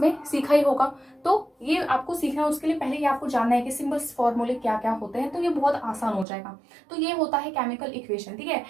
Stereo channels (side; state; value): left; drops out; at 6.2 s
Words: सीखा ही होगा, तो ये आपको सीखना है। उसके लिए पहले ये आपको जानना है कि सिंबल्स फॉर्मूले क्या क्या होते हैं, तो ये बहुत आसान हो जाएगा। तो ये होता है केमिकल इक्वेशन, ठीक है।